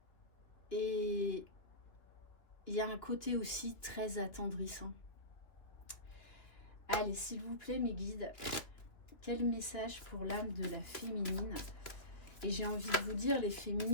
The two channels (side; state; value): right; late; 2.9 ms